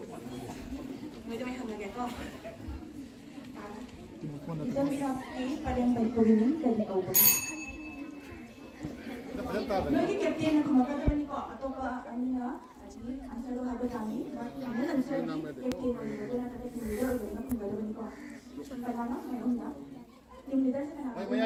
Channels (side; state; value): both; identical; correlation 1.00